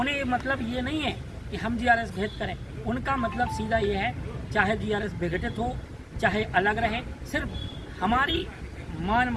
मतलब ये नहीं है कि हम जीआरएस भेद करें, उनका मतलब सीधा ये है चाहे जीआरएस विघटित हो, चाहे अलग रहे, सिर्फ हमारी मान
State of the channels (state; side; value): identical; both; correlation 1.00